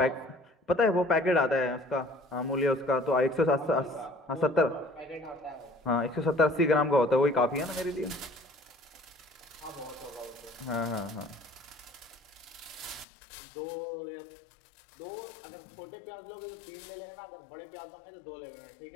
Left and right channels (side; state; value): right; drops out; at 13.1 s